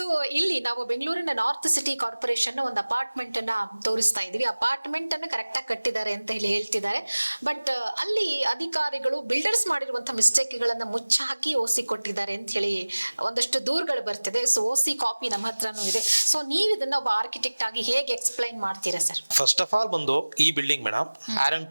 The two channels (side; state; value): both; inverted; correlation -1.00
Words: ಇಲ್ಲಿ ನಾವು ಬೆಂಗಳೂರಿನ ನಾರ್ತ್ ಸಿಟಿ ಕಾರ್ಪೊರೇಷನ್ ಒಂದು ಅಪಾರ್ಟ್ಮೆಂಟ್ ಅನ್ನ ತೋರಿಸ್ತಾ ಇದೀವಿ. ಅಪಾರ್ಟ್ಮೆಂಟ್ ಅನ್ನ ಕರೆಕ್ಟ್ ಆಗಿ ಕಟ್ಟಿದ್ದಾರೆ ಅಂತ ಹೇಳಿ ಹೇಳ್ತಿದ್ದಾರೆ. ಬಟ್ ಅಲ್ಲಿ ಅಧಿಕಾರಿಗಳು ಬಿಲ್ಡರ್ಸ್ ಮಾಡಿರುವಂತಹ ಮಿಸ್ಟೇಕ್ ಗಳನ್ನ ಮುಚ್ಚಾಕಿ ಓಸಿ ಕೊಟ್ಟಿದ್ದಾರೆ ಅಂತ ಹೇಳಿ ಒಂದಷ್ಟು ದೂರುಗಳು ಬರ್ತಿದೆ. ಸೊ ಓಸಿ ಕಾಪಿ ನಮ್ಮ ಹತ್ರನೂ ಇದೆ. ಸೊ ನೀವು ಇದನ್ನ ಒಬ್ಬ ಆರ್ಕಿಟೆಕ್ಟ್ ಆಗಿ ಹೇಗೆ ಎಕ್ಸ್ಪ್ಲೈನ್ ಮಾಡ್ತೀರಾ ಸರ್? ಫಸ್ಟ್ ಆಫ್ ಆಲ್ ಬಂದು ಈ building madam